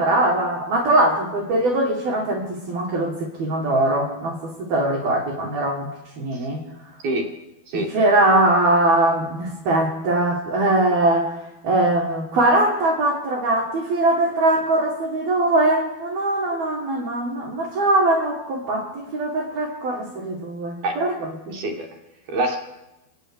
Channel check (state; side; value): late; left; 12 ms